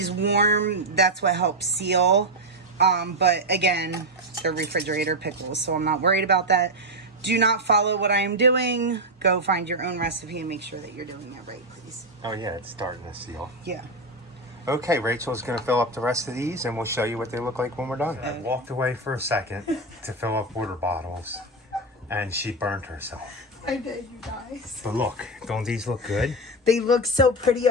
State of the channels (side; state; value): both; normal; correlation 0.07